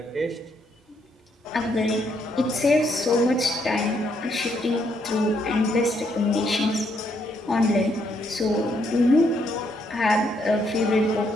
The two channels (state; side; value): normal; both; correlation 0.74